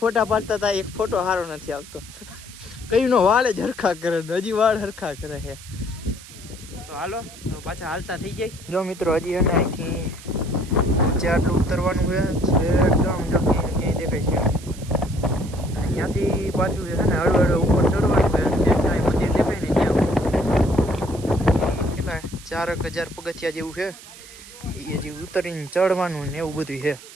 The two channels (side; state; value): right; noise; hiss, 18 dB below the sound